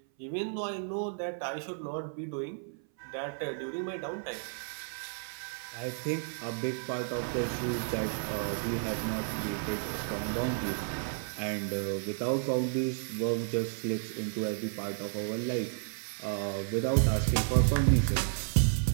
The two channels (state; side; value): silent; left; 56 dB below the other